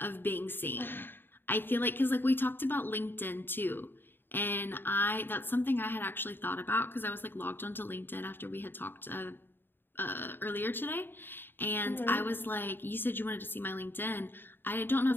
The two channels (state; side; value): late; right; 0.098 ms